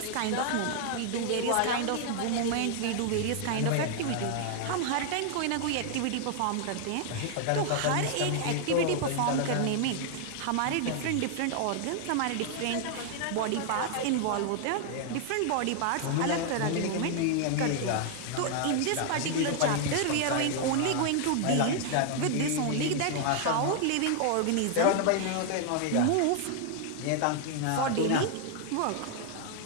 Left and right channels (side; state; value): both; different; correlation 0.00